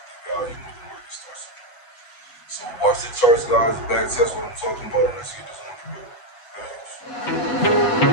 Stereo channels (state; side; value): late; right; 8.2 ms